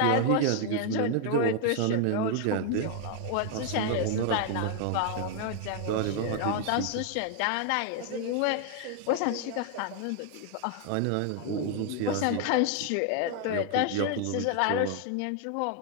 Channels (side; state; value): both; different; correlation 0.00